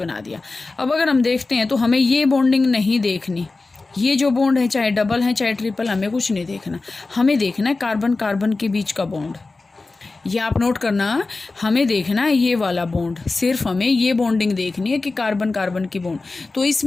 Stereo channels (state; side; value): quieter; right; 3.6 dB